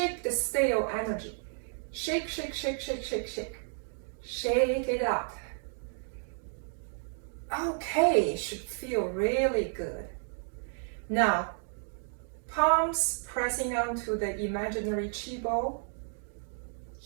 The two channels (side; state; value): left; silent; 56 dB below the other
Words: the stale energy. Shake, shake, shake, shake, shake, shake. Shake it out. Okay, should feel really good. Now, palms pressing onto the imaginary chi bowl.